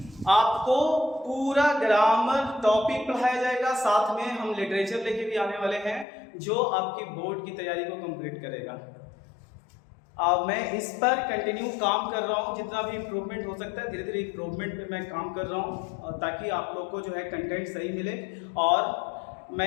आपको पूरा ग्रामर टॉपिक पढ़ाया जाएगा, साथ में हम लिटरेचर लेके भी आने वाले हैं जो आपकी बोर्ड की तैयारी को कंप्लीट करेगा। मैं इस पर कंटिन्यू काम कर रहा हूँ, जितना भी इम्प्रूवमेंट हो सकता है धीरे धीरे इम्प्रूवमेंट पे मैं काम कर रहा हूँ, ताकि आप लोग को जो है कंटेंट सही मिले। और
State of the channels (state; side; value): drops out; right; at 6.1 s